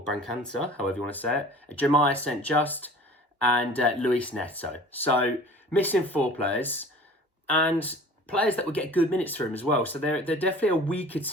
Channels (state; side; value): normal; both; correlation 0.45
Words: however you want to say it, Jeremiah St. Just, and Luis Neto. So missing 4 players, and players that would get good minutes for him as well. So they're definitely a weaker